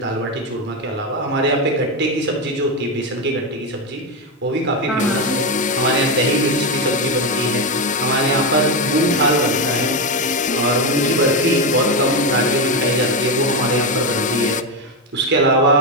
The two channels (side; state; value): both; normal; correlation 0.10